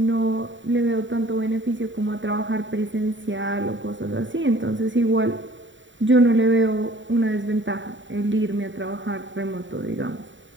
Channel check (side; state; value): left; late; 0.55 ms